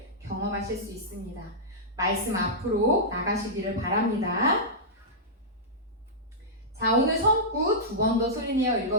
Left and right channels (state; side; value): normal; both; correlation -0.12